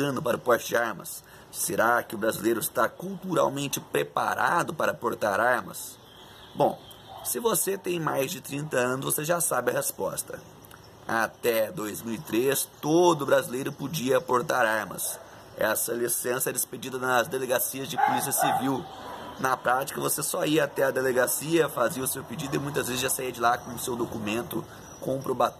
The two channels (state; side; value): identical; both; correlation 1.00